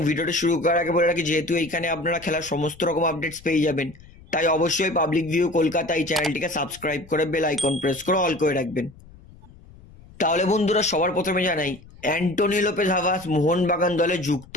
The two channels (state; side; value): noise; left; rumble, 22 dB below the sound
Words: ভিডিওটা শুরু করার আগে বলে রাখি, যেহেতু এইখানে আপনারা খেলার সমস্ত রকম আপডেটস পেয়ে যাবেন, তাই অবশ্যই পাবলিক ভিউ কলকাতা এই চ্যানেলটিকে সাবস্ক্রাইব করে বেল আইকন প্রেস করে অল করে রাখবেন। তাহলে বন্ধুরা, সবার প্রথমে জানাই অ্যান্টোনি লোপেজ হাভাস মোহনবাগান দলে যুক্ত